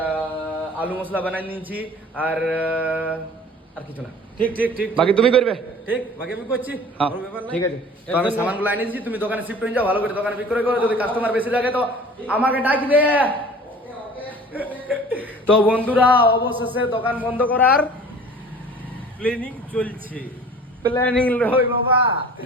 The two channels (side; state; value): both; normal; correlation 0.45